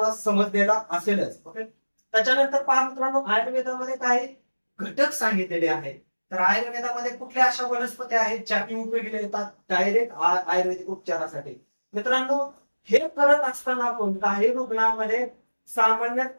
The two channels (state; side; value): inverted; both; correlation -1.00